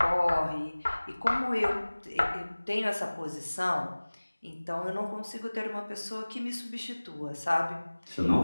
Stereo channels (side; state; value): both; inverted; correlation -1.00